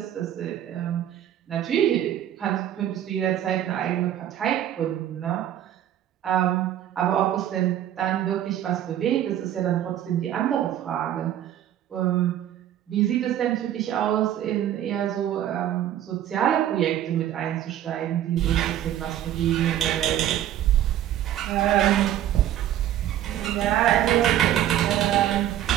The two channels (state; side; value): quieter; left; 11.6 dB